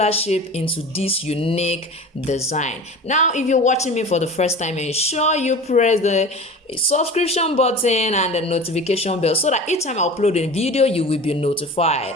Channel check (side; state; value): both; normal; correlation 0.36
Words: shape into this unique design. Now, if you're watching me for the first time, ensure you press the subscription button and the notification bell so that each time I upload a video you will be notified.